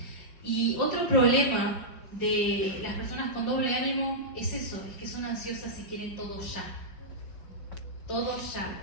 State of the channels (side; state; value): right; late; 4.7 ms